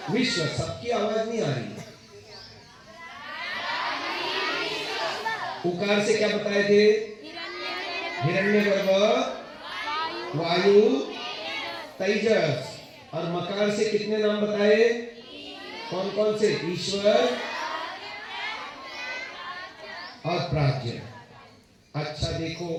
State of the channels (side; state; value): both; identical; correlation 1.00